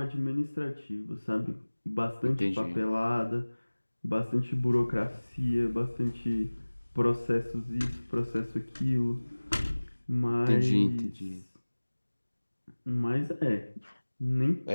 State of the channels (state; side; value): inverted; both; correlation -1.00